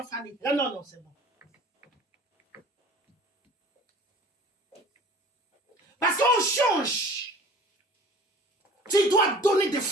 Fanny. Ah non, c'est bon. Parce qu'on change. Tu dois donner des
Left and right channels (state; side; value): normal; both; correlation 0.46